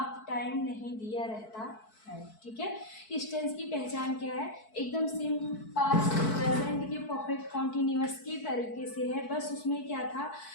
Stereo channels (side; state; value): right; late; 4.6 ms